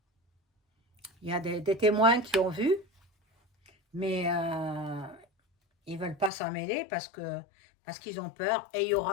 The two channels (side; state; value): right; drops out; at 6.3 s